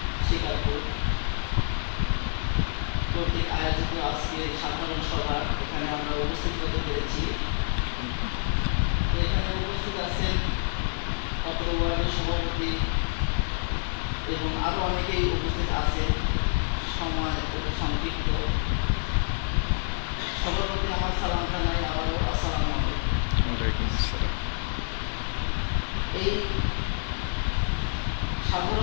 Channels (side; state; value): right; silent; digital silence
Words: শিকারপুর কর্তৃক আয়োজিত আজকে সাধারণ সভা এখানে আমরা উপস্থিত হতে পেরেছি। এখানে উপস্থিত আছেন অত্র ওয়ার্ডের সভাপতি এবং আরও অনেকেই উপস্থিত আছেন। সময় খুবই সংক্ষিপ্ত। সবার প্রতি আমার সালাম জানাই আবারও আসসালামু আলাইকুম। এই